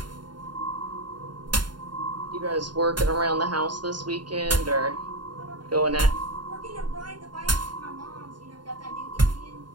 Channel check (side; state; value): left; late; 0.71 ms